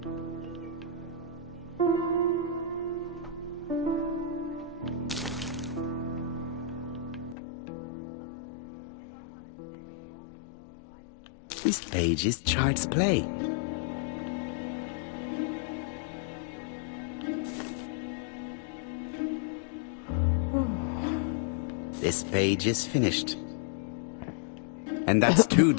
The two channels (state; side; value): drops out; right; at 7.4 s